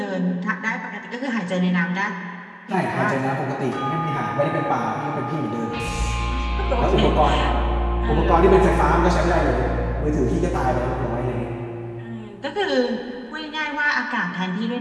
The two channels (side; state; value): both; identical; correlation 1.00